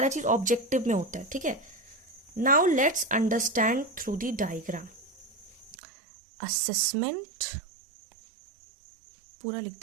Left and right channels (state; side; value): drops out; left; at 5.8 s